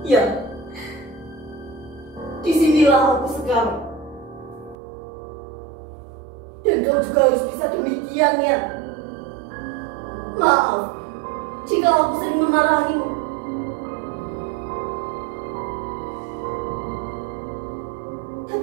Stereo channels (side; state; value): left; drops out; at 4.8 s